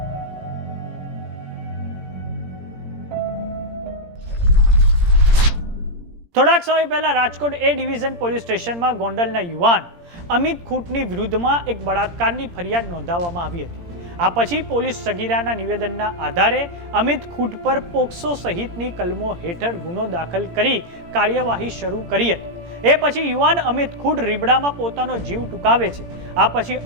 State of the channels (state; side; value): late; left; 17 ms